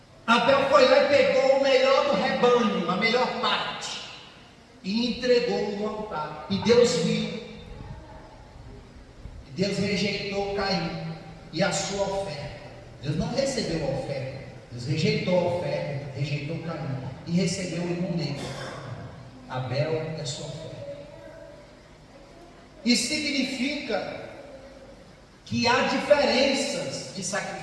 Abel foi lá e pegou o melhor do rebanho, a melhor parte, e entregou no altar. E Deus viu. Deus rejeitou Caim e a sua oferta. Deus não recebeu a oferta. Deus rejeitou a oferta, rejeitou Caim e recebeu o irmão dele. Abel é sua oferta. Isso significa que há diferenças de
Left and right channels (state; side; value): identical; both; correlation 1.00